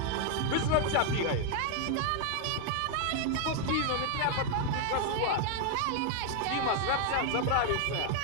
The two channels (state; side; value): different; both; correlation 0.00